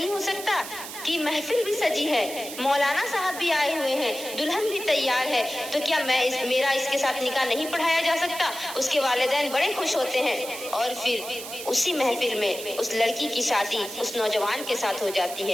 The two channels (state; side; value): noise; right; hiss, 10 dB below the sound